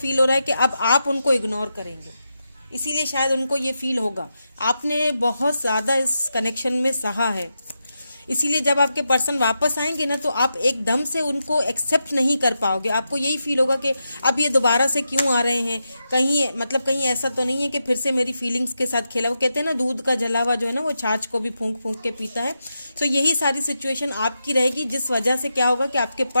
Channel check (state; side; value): inverted; both; correlation -0.87